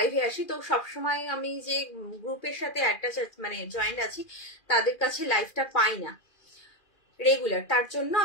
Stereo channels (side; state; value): right; late; 2.4 ms